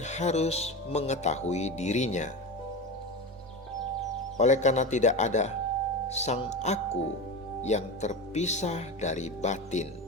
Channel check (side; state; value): both; normal; correlation 0.23